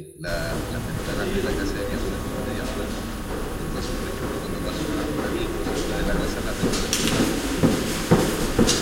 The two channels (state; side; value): identical; both; correlation 1.00